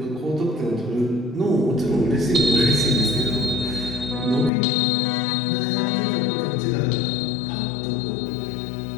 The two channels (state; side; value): drops out; right; at 4.5 s